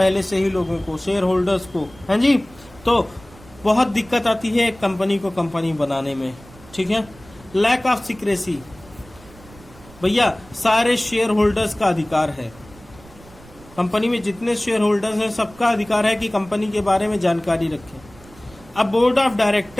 से ही लोगों को, शेयर होल्डर्स को, है जी। तो बहुत दिक्कत आती है कंपनी को कंपनी बनाने में, ठीक है। लैक ऑफ सीक्रेसी, भैया सारे शेयर होल्डर्स का अधिकार है, कंपनी में जितने शेयर होल्डर्स हैं सबका अधिकार है कि कंपनी के बारे में जानकारी रखें। अब बोर्ड ऑफ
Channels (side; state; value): right; noise; rumble, 22 dB below the sound